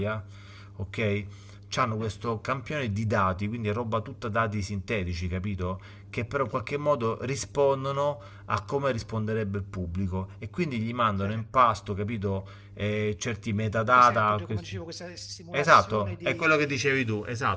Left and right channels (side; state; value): both; identical; correlation 1.00